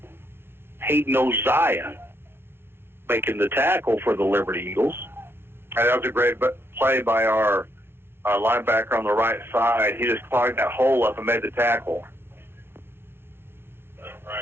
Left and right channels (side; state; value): left; late; 0.11 ms